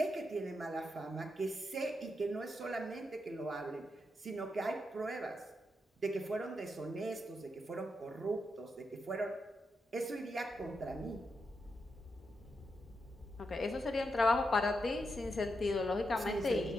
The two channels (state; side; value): normal; both; correlation 0.84